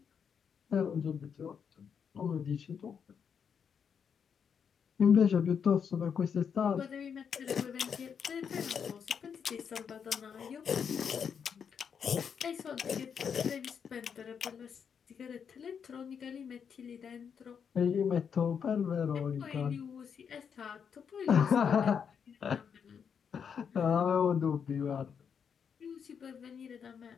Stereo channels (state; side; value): quieter; right; 7.1 dB